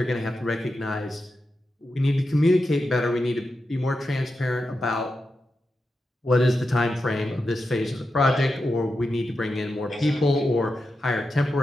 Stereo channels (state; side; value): normal; both; correlation 0.89